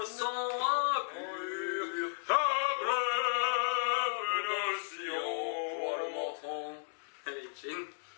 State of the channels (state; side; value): silent; right; digital silence